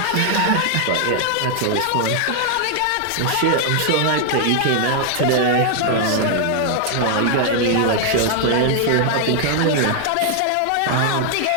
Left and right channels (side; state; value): both; different; correlation 0.00